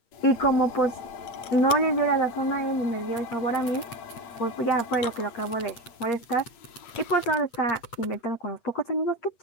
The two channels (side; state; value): right; late; 8.6 ms